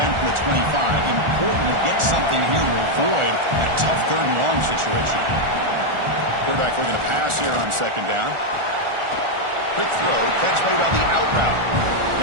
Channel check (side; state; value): left; late; 1.4 ms